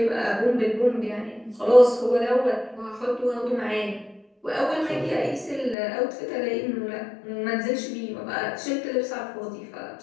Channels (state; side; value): drops out; right; at 5.8 s